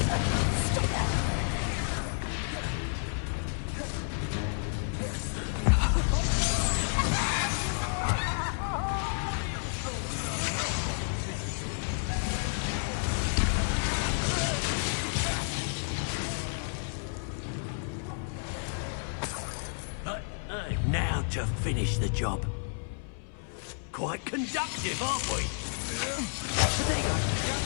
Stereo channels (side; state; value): right; silent; 57 dB below the other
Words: Stop it. What are your thoughts on electricity? Now to finish the job. Quite conductive, aren't we? Potato,